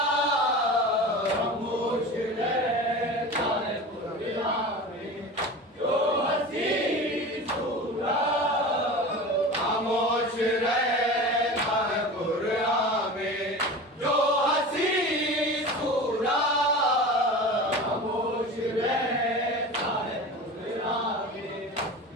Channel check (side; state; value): both; normal; correlation 0.33